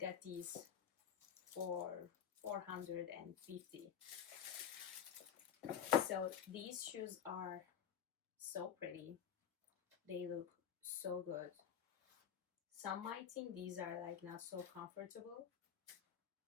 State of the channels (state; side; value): quieter; right; 8.4 dB